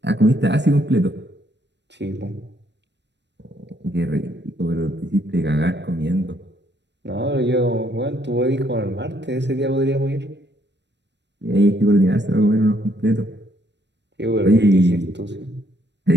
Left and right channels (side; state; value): left; late; 0.51 ms